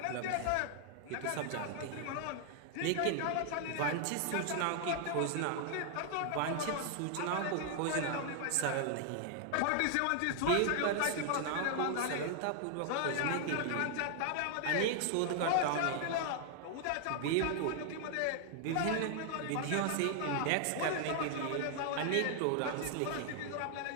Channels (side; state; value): both; different; correlation 0.00